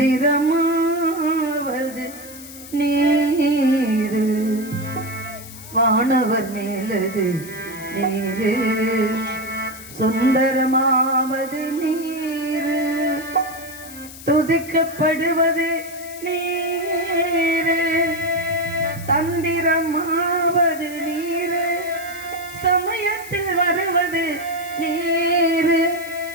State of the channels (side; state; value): left; noise; hiss, 16 dB below the sound